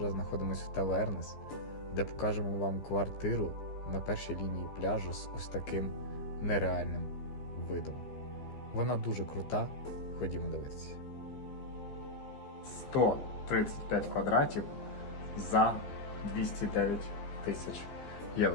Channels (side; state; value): right; late; 15 ms